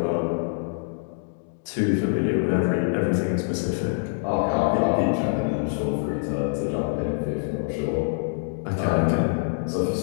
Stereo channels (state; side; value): silent; right; digital silence